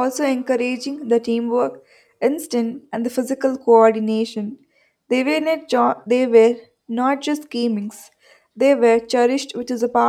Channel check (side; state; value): both; identical; correlation 1.00